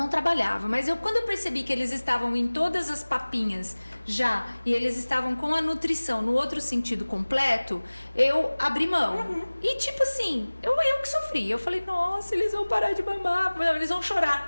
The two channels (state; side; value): inverted; both; correlation -1.00